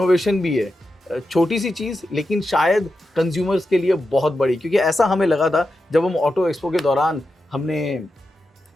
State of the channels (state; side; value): normal; both; correlation 0.89